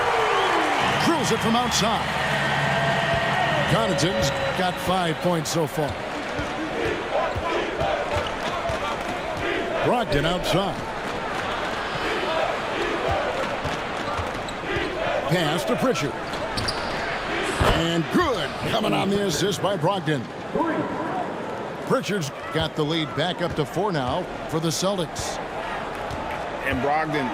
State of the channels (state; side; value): identical; both; correlation 1.00